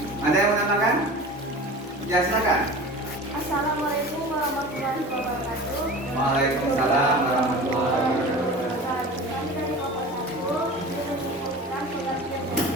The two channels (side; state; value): both; normal; correlation 0.36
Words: Ada yang menambahkan? Ya, silakan. Assalamualaikum warahmatullahi wabarakatuh. Waalaikumsalam warahmatullahi wabarakatuh. Kami dari kelompok 1 ingin menyimpulkan pengertian